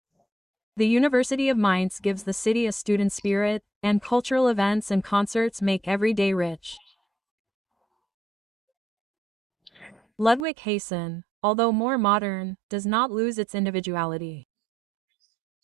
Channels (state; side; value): drops out; left; at 10.5 s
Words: The University of Mainz gives the city a student spirit, and cultural events and concerts make every day rich. Ludwig-Hessen, although more modern, does not lose its individuality.